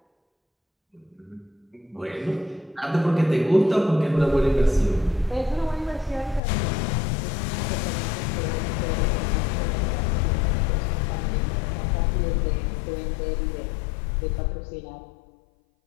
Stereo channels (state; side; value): drops out; right; at 6.4 s